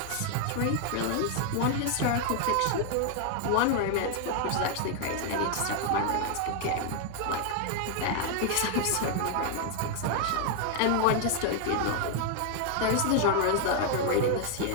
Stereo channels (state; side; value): different; both; correlation 0.00